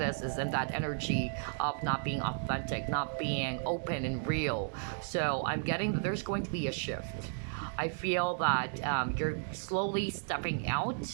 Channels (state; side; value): silent; left; digital silence